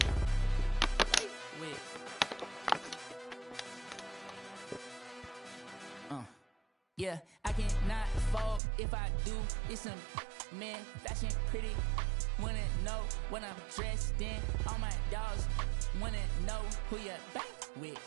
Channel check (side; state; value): left; drops out; at 8.6 s